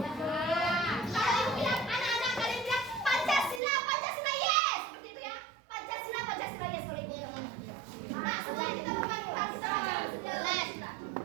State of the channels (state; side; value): drops out; left; at 3.6 s